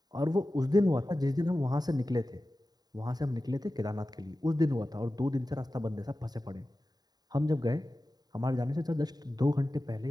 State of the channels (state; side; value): late; left; 0.19 ms